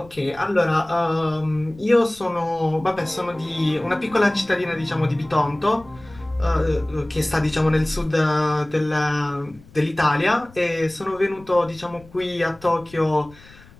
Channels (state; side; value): noise; left; rumble, 23 dB below the sound